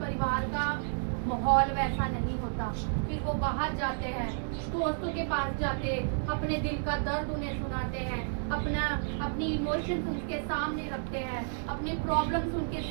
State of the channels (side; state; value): left; silent; digital silence